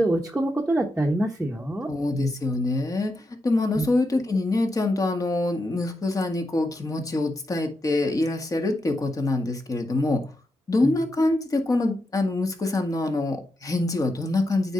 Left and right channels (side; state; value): both; normal; correlation 0.85